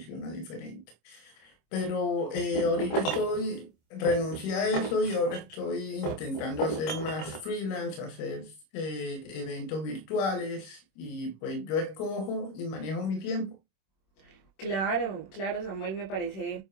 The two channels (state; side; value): late; right; 26 ms